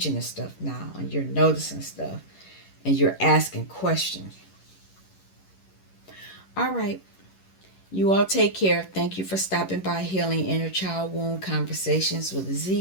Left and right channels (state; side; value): late; right; 11 ms